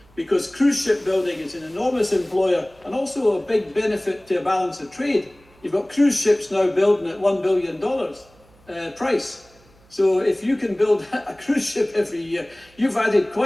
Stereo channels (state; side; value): noise; right; hum, 29 dB below the sound